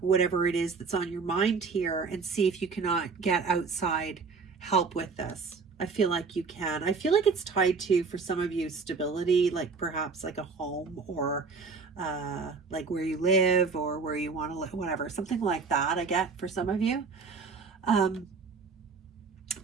it is that's on your mind here and see if you cannot get outside help with this. I feel like you can. I feel like it's tied to, for some of you, stability, like perhaps like a home, or like where you live or where you want to live, whatever, something like that. I get for some of you.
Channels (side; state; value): left; quieter; 4.9 dB